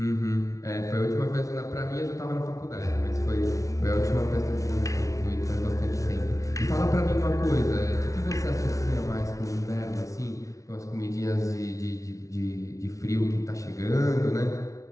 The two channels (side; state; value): right; late; 0.16 ms